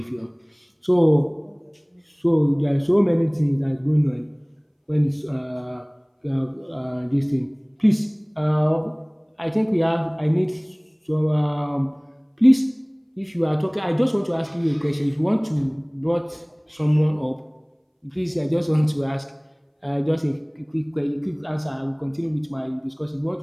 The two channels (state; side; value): identical; both; correlation 1.00